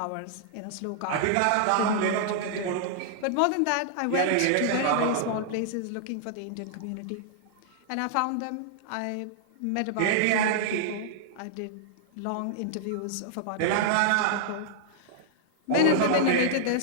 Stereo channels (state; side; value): different; both; correlation -0.01